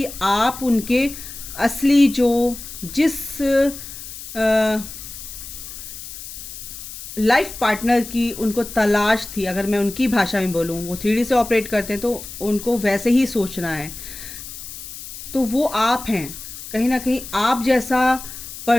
आप उनके असली जो जिस लाइफ पार्टनर की उनको तलाश थी, अगर मैं उनकी भाषा में बोलूँ, वो 3D से ऑपरेट करते हैं तो उनको वैसे ही सोचना है। तो वो आप हैं, कहीं ना कहीं आप जैसा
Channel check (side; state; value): left; noise; hiss, 12 dB below the sound